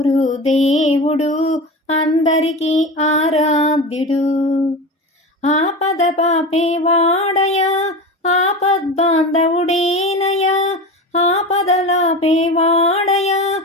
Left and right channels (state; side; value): normal; both; correlation 0.28